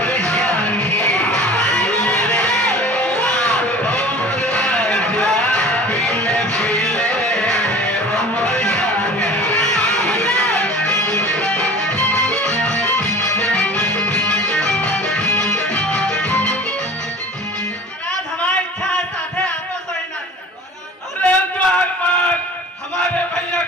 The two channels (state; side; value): normal; both; correlation 0.42